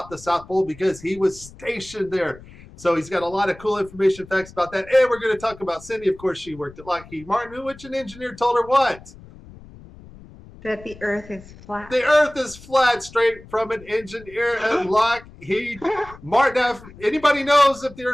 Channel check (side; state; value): left; noise; rumble, 20 dB below the sound